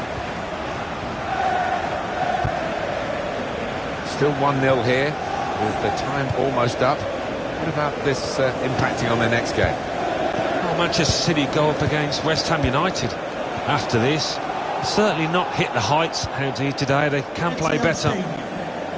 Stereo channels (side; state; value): both; identical; correlation 1.00